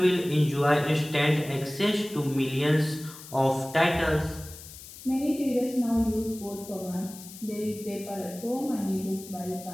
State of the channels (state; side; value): noise; left; hiss, 16 dB below the sound